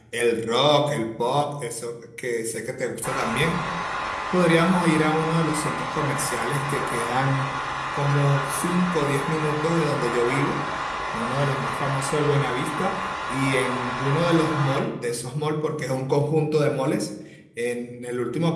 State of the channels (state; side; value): identical; both; correlation 1.00